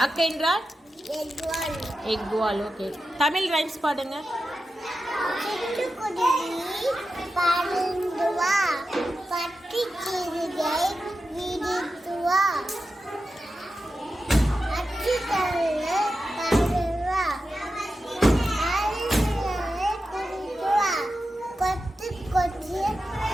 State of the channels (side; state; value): both; normal; correlation 0.91